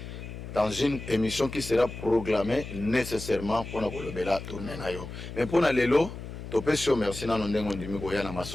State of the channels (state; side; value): noise; left; hum, 10 dB below the sound